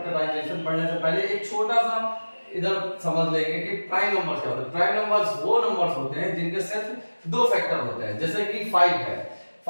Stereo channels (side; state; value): both; inverted; correlation -1.00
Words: पढ़ने से पहले एक छोटा सा इधर समझ लेंगे कि प्राइम नंबर्स क्या होते हैं। प्राइम नंबर्स वो नंबर्स होते हैं जिनके सिर्फ दो फैक्टर होते हैं। जैसे कि 5 है